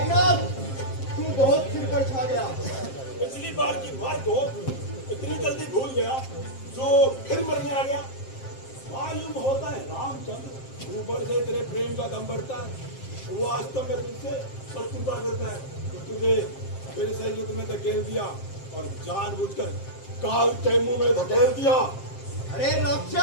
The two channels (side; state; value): right; late; 7.6 ms